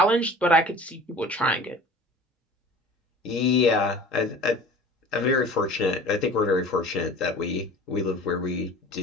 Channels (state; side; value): normal; both; correlation 0.42